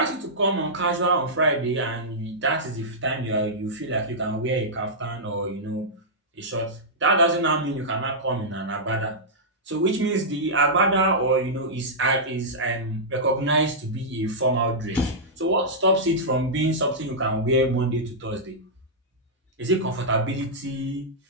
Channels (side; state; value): both; normal; correlation -0.11